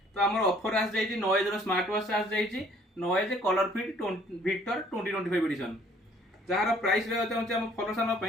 तो आम ऑफर आस जाइए नॉइज स्मार्ट वॉच आस जाइए Noise ColorFit Victor 2025 edition जार प्राइस रही फलोसान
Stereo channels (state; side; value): normal; both; correlation 0.59